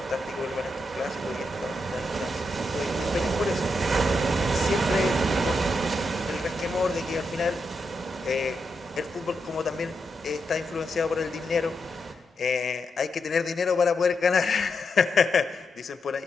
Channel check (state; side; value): normal; both; correlation 0.84